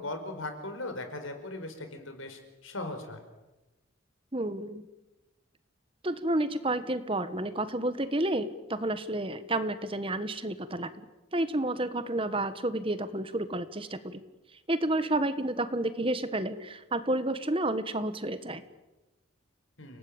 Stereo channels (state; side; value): normal; both; correlation 0.45